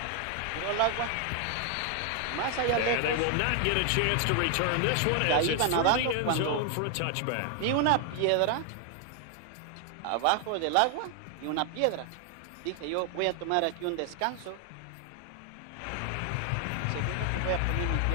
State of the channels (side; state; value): both; different; correlation 0.00